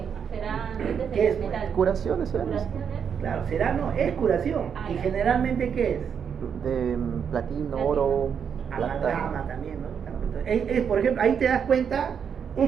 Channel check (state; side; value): quieter; left; 7.3 dB